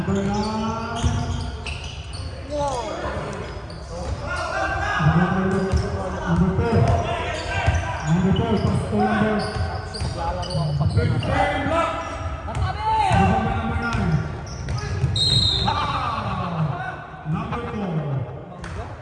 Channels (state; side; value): identical; both; correlation 1.00